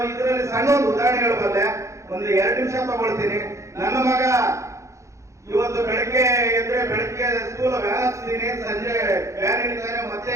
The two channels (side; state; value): left; late; 0.15 ms